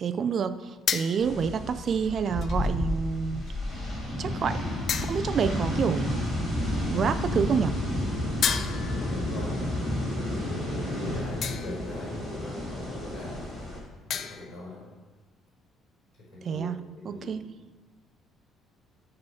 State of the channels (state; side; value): normal; both; correlation 0.73